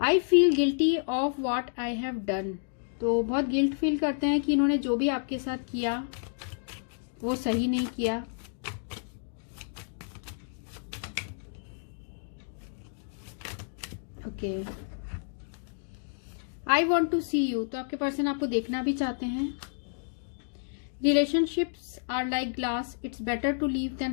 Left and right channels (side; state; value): right; silent; digital silence